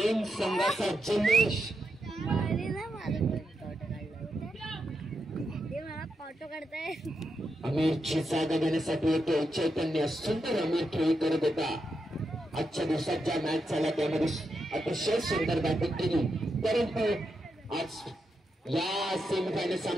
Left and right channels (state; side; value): normal; both; correlation 0.84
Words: संघाचा जल्लोष. फोटो काढताय. अमितची जागा घेण्यासाठी येतो चैतन्य. सुंदर अमित खेळी करत होता. आजच्या दिवसात ज्या मॅच झाल्या त्यामध्ये अतिशय सुंदर बॅटिंग केली, परंतु आज या सेमीफायनल